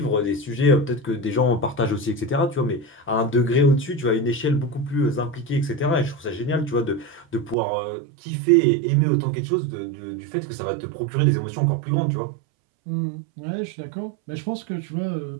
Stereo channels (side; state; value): left; drops out; at 7.6 s